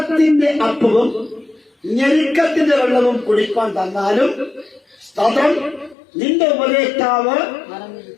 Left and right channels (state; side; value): drops out; right; at 6.0 s